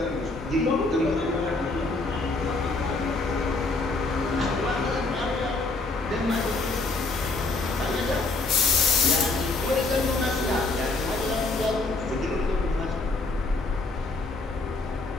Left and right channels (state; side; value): quieter; right; 3.4 dB